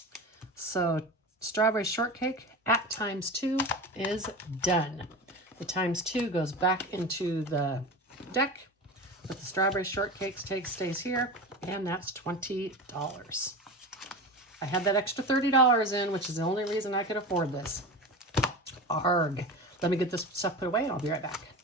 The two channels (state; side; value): normal; both; correlation 0.28